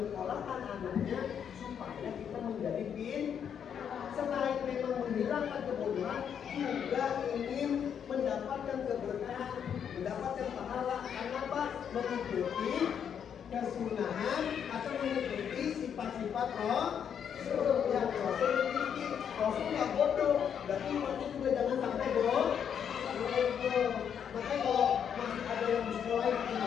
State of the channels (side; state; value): right; quieter; 8.1 dB